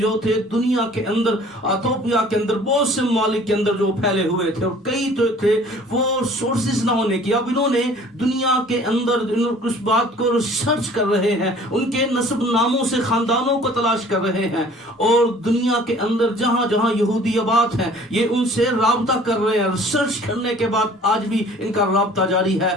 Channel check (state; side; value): normal; both; correlation 0.51